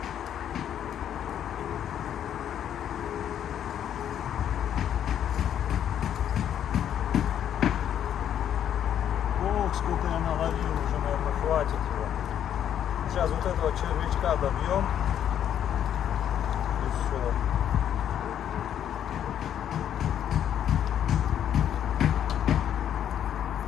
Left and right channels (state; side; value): quieter; right; 9.8 dB